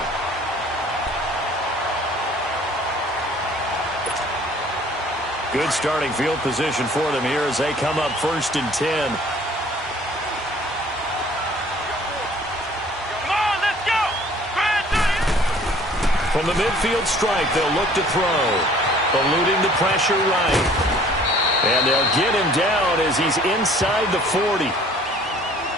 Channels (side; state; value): both; normal; correlation 0.54